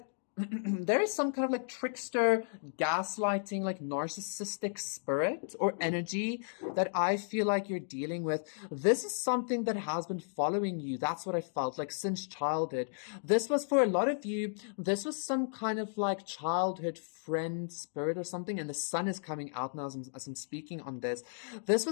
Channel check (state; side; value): silent; right; digital silence